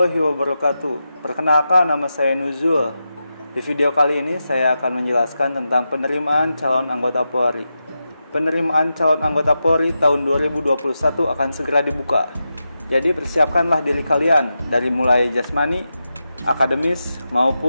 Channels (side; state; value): both; inverted; correlation -0.89